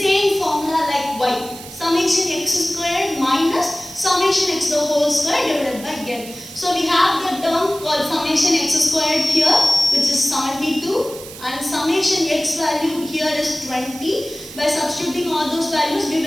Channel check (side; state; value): right; noise; hiss, 15 dB below the sound